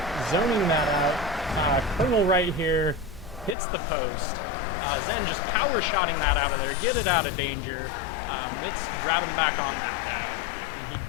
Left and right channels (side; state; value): right; drops out; at 3.6 s